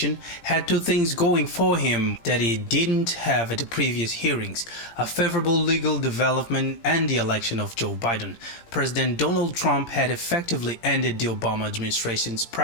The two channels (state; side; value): late; right; 17 ms